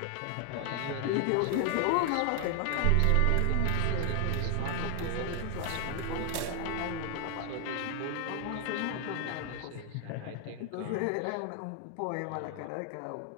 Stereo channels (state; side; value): different; both; correlation 0.00